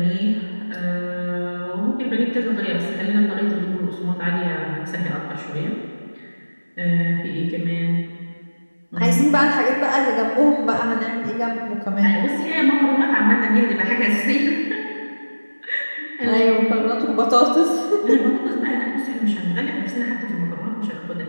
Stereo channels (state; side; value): inverted; both; correlation -1.00